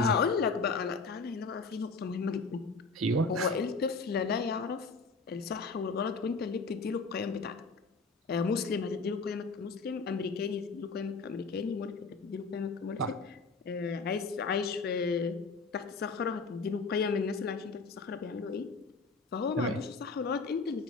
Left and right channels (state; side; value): quieter; right; 4.2 dB